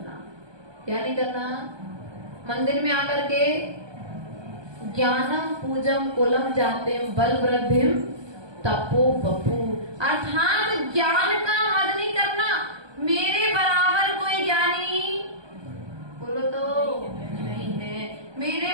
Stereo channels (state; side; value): late; left; 1.2 ms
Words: क्या नहीं करना? मंदिर में आकर के ज्ञानम पूजम कुलम जाते बल वृद्धिम तपो बपू, अर्थात ज्ञान का मद नहीं करना। मेरे बराबर कोई ज्ञानी बोलो तो नहीं है, मेरे